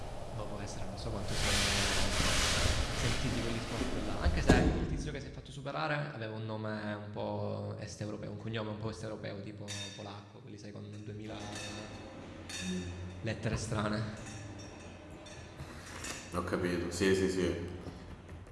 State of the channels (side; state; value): both; identical; correlation 1.00